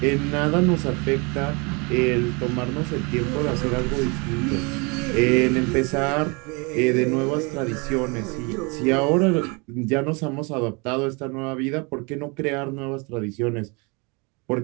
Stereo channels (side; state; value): left; quieter; 30.1 dB